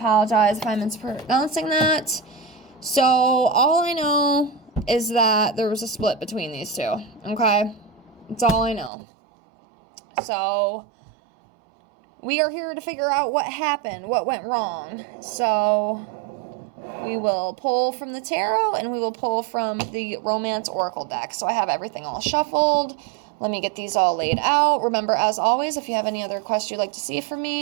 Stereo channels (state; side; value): drops out; left; at 8.9 s